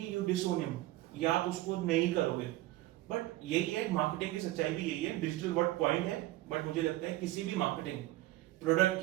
यू डिसोन हिम। या आप उसको नहीं करोगे। बट यही है, मार्केटिंग की सच्चाई भी यही है, डिजिटल वर्ड पॉइंट है, बट मुझे लगता है किसी भी मार्केटिंग प्रोडक्ट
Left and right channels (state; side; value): quieter; left; 17.0 dB